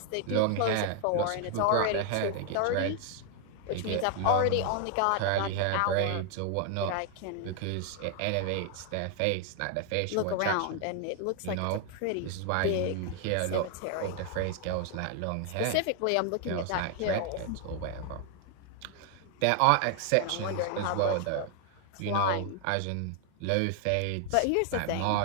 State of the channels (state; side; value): different; both; correlation 0.00